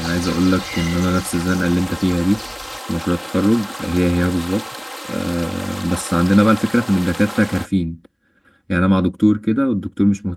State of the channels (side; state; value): both; identical; correlation 1.00